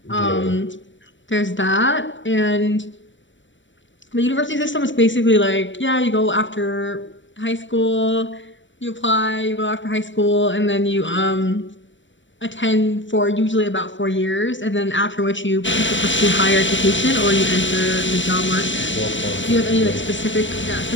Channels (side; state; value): right; late; 0.55 ms